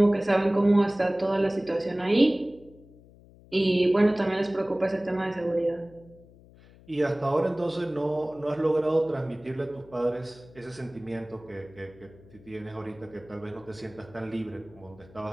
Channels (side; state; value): left; noise; hum, 24 dB below the sound